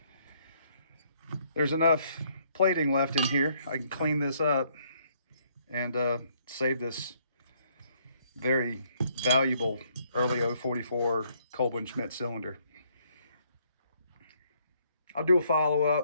there's enough plating left in here. I can clean this up and save this very valuable early 044 Kolb & Schmidt cylinder. I'll do a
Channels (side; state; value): both; inverted; correlation -0.68